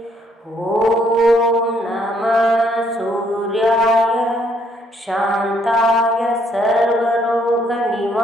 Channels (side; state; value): both; normal; correlation 0.68